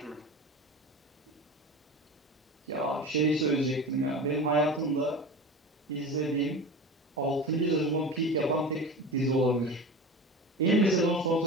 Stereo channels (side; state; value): both; normal; correlation 0.31